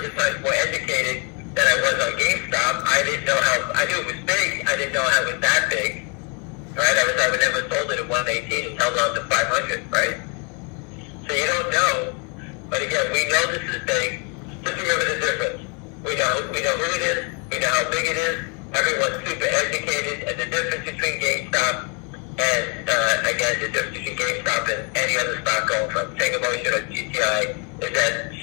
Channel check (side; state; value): right; quieter; 34.9 dB